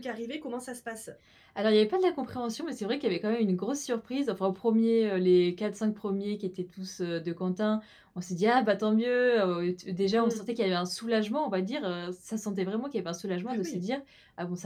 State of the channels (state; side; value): identical; both; correlation 1.00